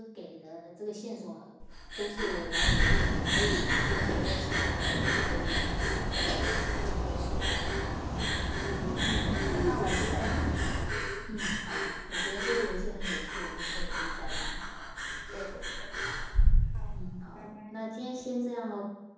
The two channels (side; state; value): both; identical; correlation 1.00